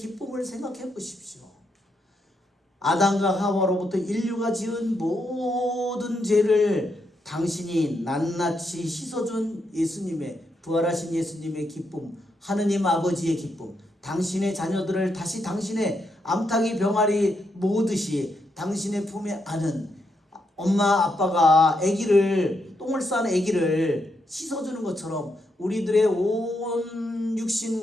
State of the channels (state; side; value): normal; both; correlation 0.80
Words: 생각해 보십시오. 아담과 하와로부터 인류가 지은 모든 죄를 당신이 낱낱이 씻어준 예수님의 부활하신 예수님의 기쁨, 하느님 아버지의 기쁨, 당신의 자녀들을 다시 당신의 암탉이 병아리 모으듯이 당신의 품에 안은 엄마 아빠가 똥을 싼 아기를 씻어주는 것처럼 우리들의 온